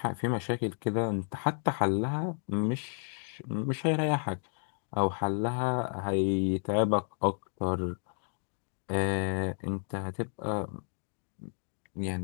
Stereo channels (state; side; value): silent; right; 56 dB below the other